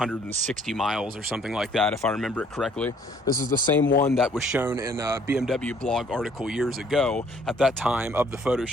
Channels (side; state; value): both; normal; correlation 0.61